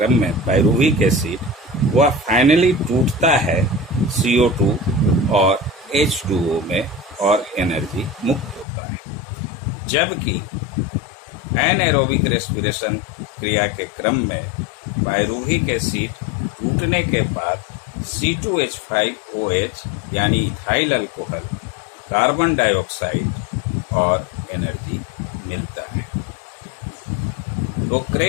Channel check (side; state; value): right; drops out; at 8.7 s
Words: में पाइरूविक एसिड, वह फाइनली टूटता है CO2 और H2O में और एनर्जी मुक्त होता है। जबकि एनएरोबिक रेस्पिरेशन क्रिया के क्रम में पाइरूविक एसिड टूटने के बाद C2H5OH यानी इथाइल अल्कोहल, कार्बन डाइऑक्साइड और एनर्जी मिलता है। तो